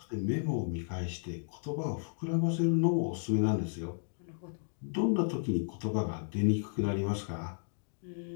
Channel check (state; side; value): silent; right; digital silence